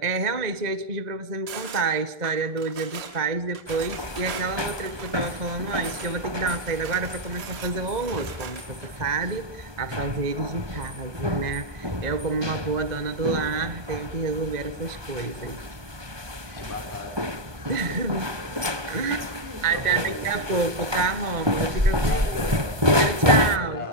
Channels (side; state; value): left; late; 1.2 ms